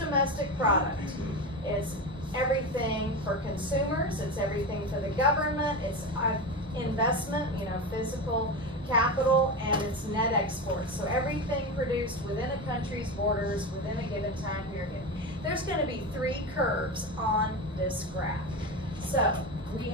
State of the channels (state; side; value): normal; both; correlation 0.21